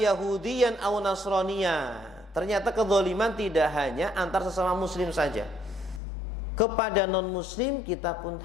aw nasraniya. Ternyata kezaliman tidak hanya antar sesama muslim saja. Kepada non muslim kita pun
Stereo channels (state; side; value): drops out; right; at 6.0 s